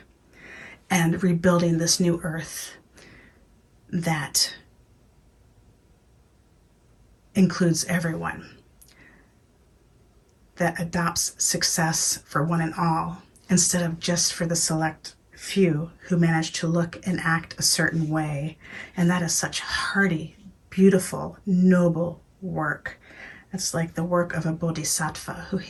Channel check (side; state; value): both; identical; correlation 1.00